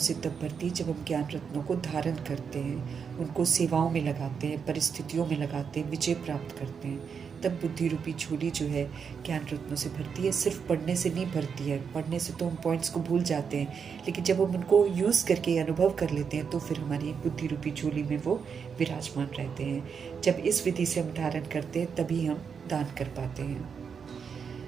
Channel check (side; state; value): left; quieter; 6.4 dB